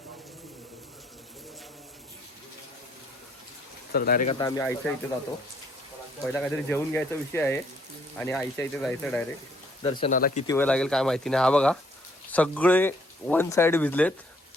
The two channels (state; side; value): normal; both; correlation 0.65